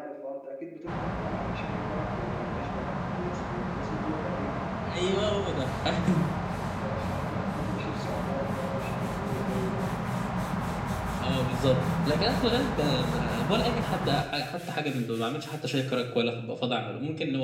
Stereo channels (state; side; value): identical; both; correlation 1.00